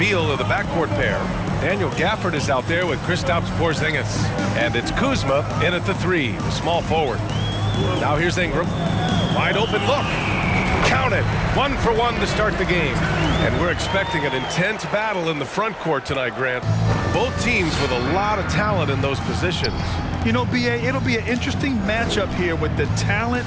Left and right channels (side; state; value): both; identical; correlation 1.00